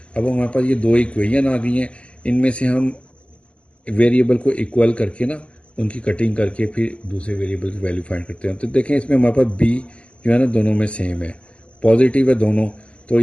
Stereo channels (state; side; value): late; right; 0.055 ms